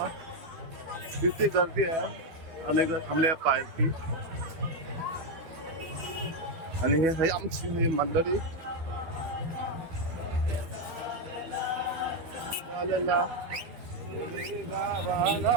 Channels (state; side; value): late; left; 12 ms